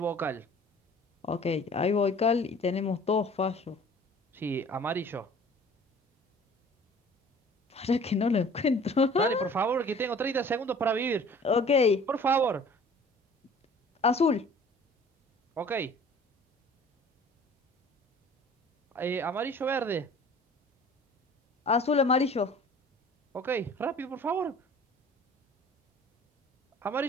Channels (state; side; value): normal; both; correlation 0.48